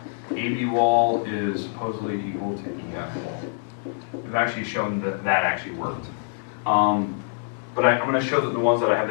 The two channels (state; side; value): silent; right; digital silence